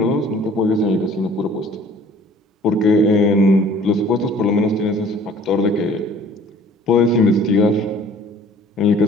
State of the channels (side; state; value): both; normal; correlation 0.52